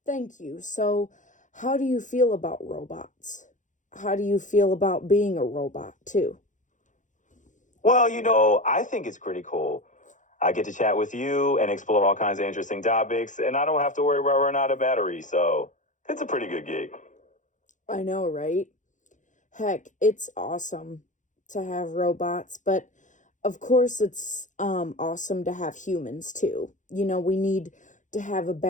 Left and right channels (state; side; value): late; right; 0.36 ms